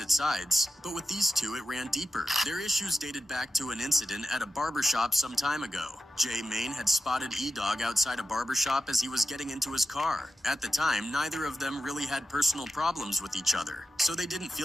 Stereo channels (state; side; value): normal; both; correlation 0.92